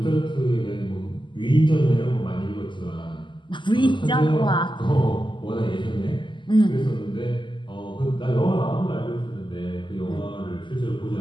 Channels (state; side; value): late; right; 0.24 ms